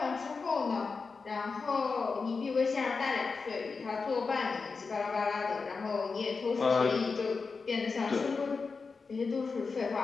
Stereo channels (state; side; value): quieter; right; 4.7 dB